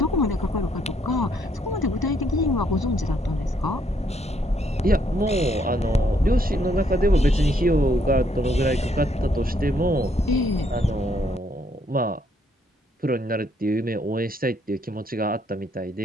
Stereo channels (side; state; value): both; normal; correlation 0.70